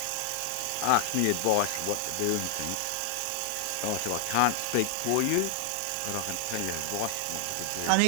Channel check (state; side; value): different; both; correlation 0.00